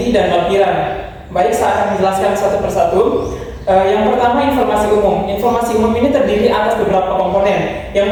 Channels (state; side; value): identical; both; correlation 1.00